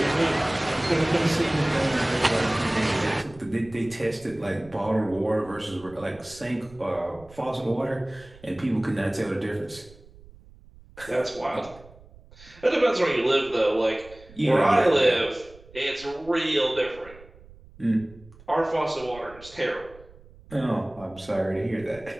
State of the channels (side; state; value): right; noise; rumble, 22 dB below the sound